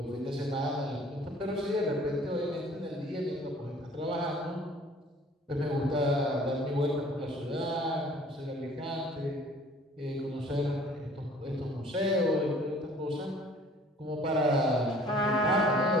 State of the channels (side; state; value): both; normal; correlation 0.53